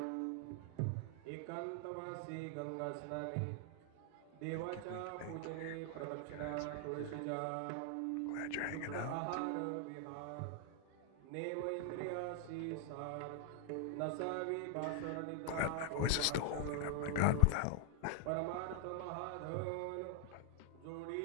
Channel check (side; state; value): both; different; correlation 0.00